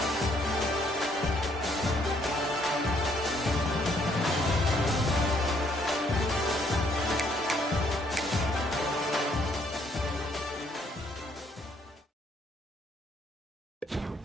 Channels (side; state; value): both; normal; correlation 0.67